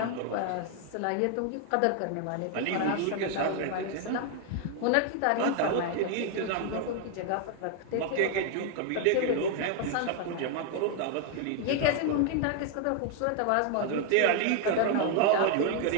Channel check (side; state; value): both; different; correlation 0.00